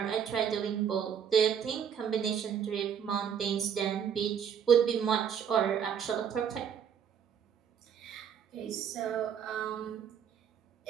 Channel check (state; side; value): quieter; left; 8.1 dB